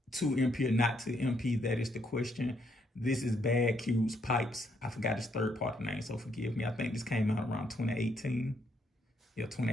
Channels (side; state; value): both; normal; correlation 0.73